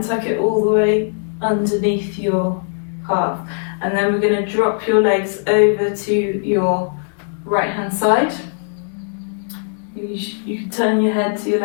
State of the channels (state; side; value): silent; right; digital silence